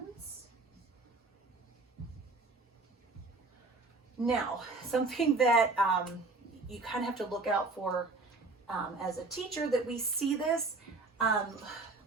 Now, something that you kind of have to look out for as a teacher, that we see this.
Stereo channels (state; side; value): quieter; left; 3.5 dB